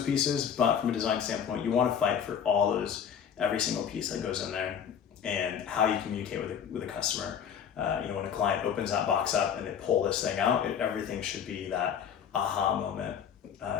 pieces, but from a design standpoint, you want to fight for every single piece that goes in there and how you communicate with a customer. When a client opens that box up and they pull this thing out, everything should be that aha moment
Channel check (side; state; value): right; quieter; 8.1 dB